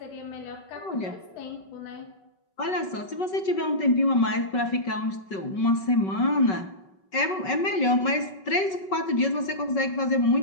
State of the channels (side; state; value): right; late; 5.3 ms